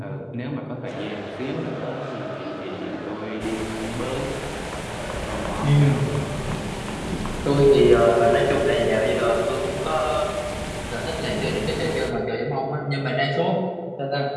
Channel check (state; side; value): identical; both; correlation 1.00